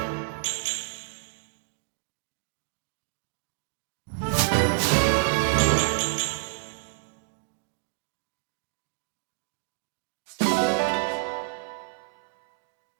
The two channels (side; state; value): left; silent; digital silence